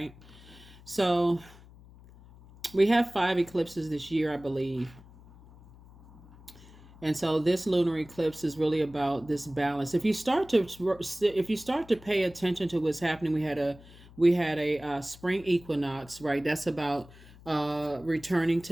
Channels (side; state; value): left; noise; hum, 22 dB below the sound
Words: So we have 5 eclipses this year, I believe. And so this lunar eclipse is really about this balance. If you start to pay attention to what's happening, we had a spring equinox, right? That's about returning